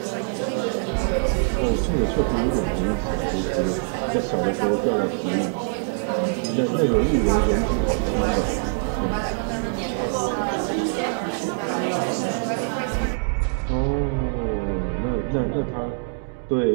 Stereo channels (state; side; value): silent; left; 56 dB below the other